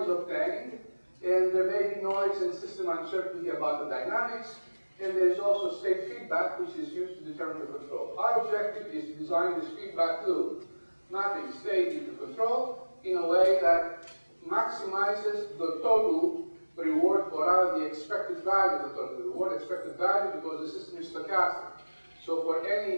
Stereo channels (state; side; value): inverted; both; correlation -1.00